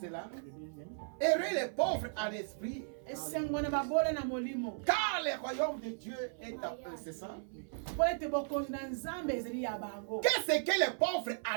là. Heureux les pauvres en esprit, car le royaume de Dieu est à eux, c'est ça? Qu'est-ce que les pauvres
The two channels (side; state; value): left; silent; 54 dB below the other